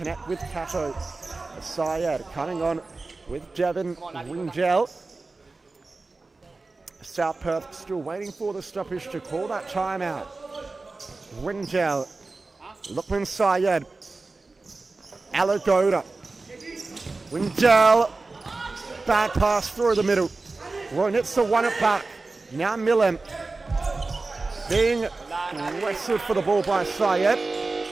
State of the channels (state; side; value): quieter; left; 3.6 dB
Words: with Cato. Syed coming on with Devin Wingel. South Perth still waiting for the stoppage to call that timeout. Wingel. Lukman Syed. Aligoda. Wingel. Bad pass through the middle. Roynitzer won it back. Now Millen being wrestled for the ball by Syed.